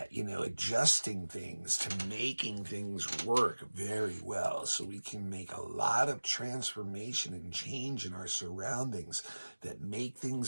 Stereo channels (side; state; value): both; inverted; correlation -1.00